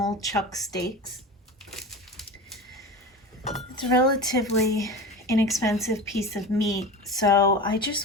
chuck steaks. It's a relatively inexpensive piece of meat, so I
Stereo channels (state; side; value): normal; both; correlation 0.30